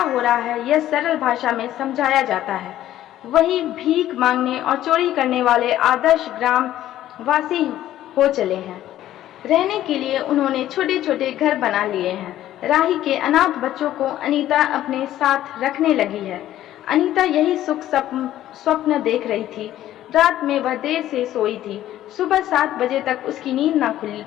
हो रहा है यह सरल भाषा में समझाया जाता है। वही भीख मांगने और चोरी करने वाले आदर्श ग्राम वासी हो चले हैं। रहने के लिए उन्होंने छोटे छोटे घर बना लिए हैं। राही के अनाथ बच्चों को अनीता अपने साथ रखने लगी है। अनीता यही सुख स्वप्न देख रही थी। रात में वह देर से सोई थी। सुबह 7 बजे तक उसकी नींद न खुल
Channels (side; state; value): right; quieter; 13.1 dB